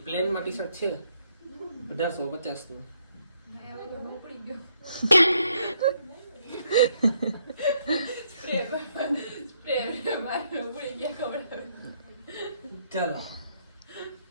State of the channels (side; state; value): both; inverted; correlation -0.72